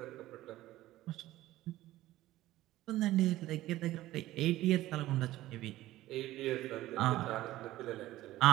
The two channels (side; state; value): left; quieter; 15.8 dB